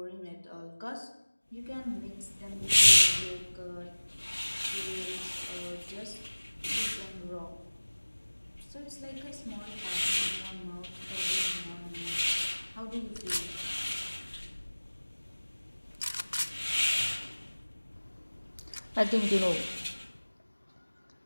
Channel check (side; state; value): both; inverted; correlation -1.00